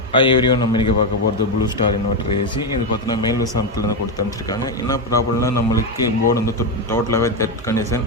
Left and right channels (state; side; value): normal; both; correlation 0.08